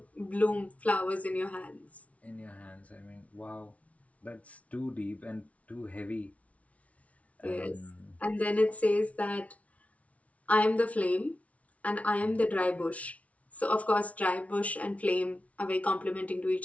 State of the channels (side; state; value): right; late; 0.066 ms